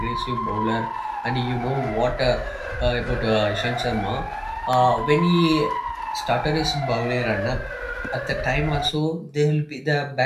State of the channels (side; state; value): both; identical; correlation 1.00